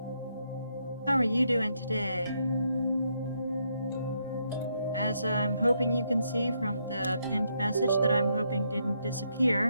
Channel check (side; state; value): both; inverted; correlation -0.77